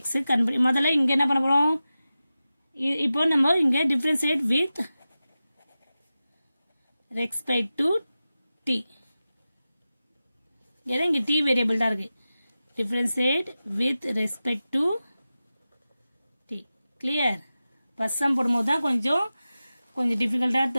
முதல்ல இங்க என்ன பண்ண போறோம் இப்போ நம்ம இங்க differentiate with respect to t இங்க t வேரியபிள் தான் இருக்கு differentiate with respect to t clear first sum போடும்போது தான் கொஞ்சம் டிஃபிகல்ட்டா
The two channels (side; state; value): both; inverted; correlation -0.94